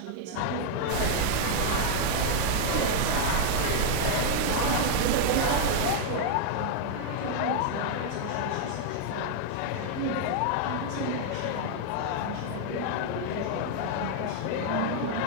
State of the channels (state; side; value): different; both; correlation 0.00